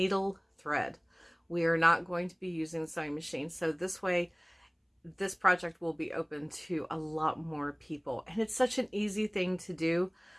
thread. We are not going to be using the sewing machine, so this way this project will be open to a lot more people. And it's such an easy thing to do.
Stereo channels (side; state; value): both; identical; correlation 1.00